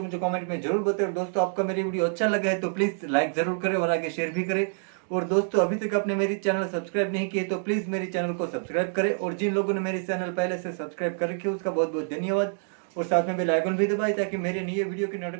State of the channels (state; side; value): silent; left; 60 dB below the other